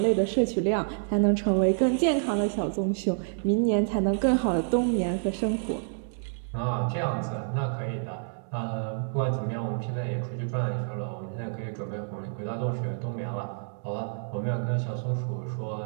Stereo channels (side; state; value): left; silent; digital silence